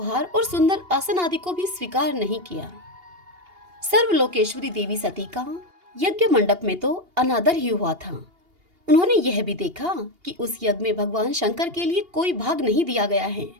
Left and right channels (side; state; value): left; late; 2.8 ms